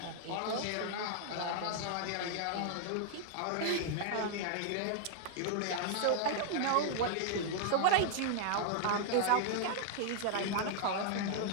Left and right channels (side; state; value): both; different; correlation 0.00